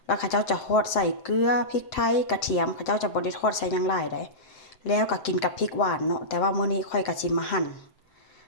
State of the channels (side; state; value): right; late; 7.7 ms